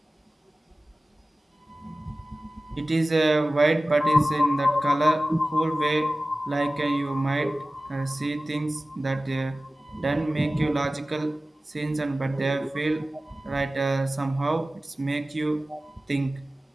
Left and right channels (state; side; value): normal; both; correlation 0.97